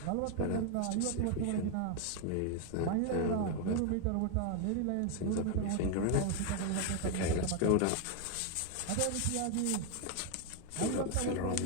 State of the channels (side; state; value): both; different; correlation 0.01